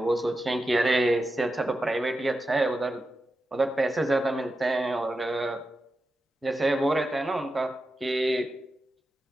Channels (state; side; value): normal; both; correlation 0.90